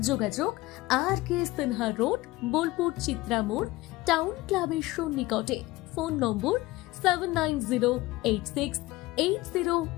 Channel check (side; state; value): right; quieter; 19.2 dB